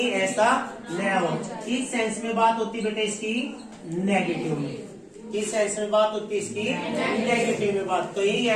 ऐसा न हो। किस सेंस में बात होती है बेटा इसकी? नेगेटिव में। किस सेंस में बात होती है इसकी? नेगेटिव में बात, कहीं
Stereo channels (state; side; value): identical; both; correlation 1.00